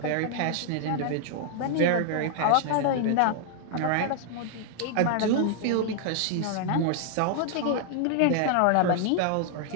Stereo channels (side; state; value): both; different; correlation 0.00